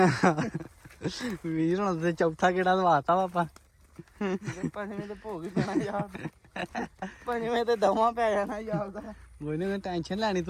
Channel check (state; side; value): identical; both; correlation 1.00